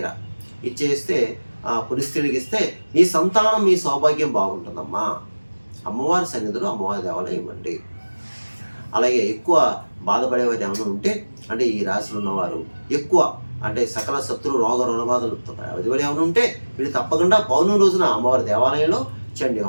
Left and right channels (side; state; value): both; inverted; correlation -1.00